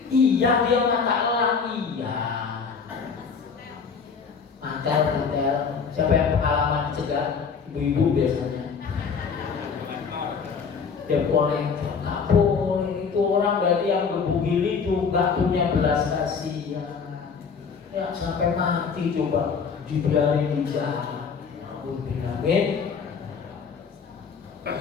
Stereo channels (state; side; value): quieter; right; 5.8 dB